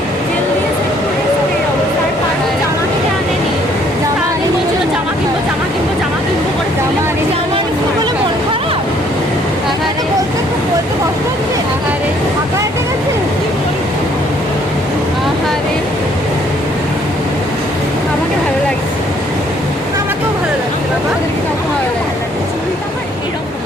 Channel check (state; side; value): normal; both; correlation 0.63